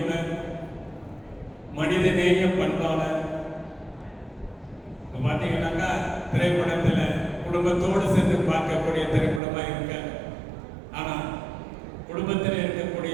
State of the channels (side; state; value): left; drops out; at 9.4 s